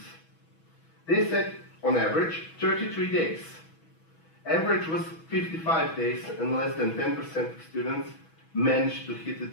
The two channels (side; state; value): right; late; 6.2 ms